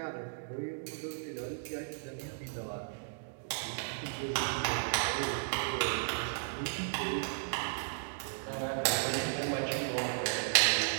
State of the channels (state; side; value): silent; left; digital silence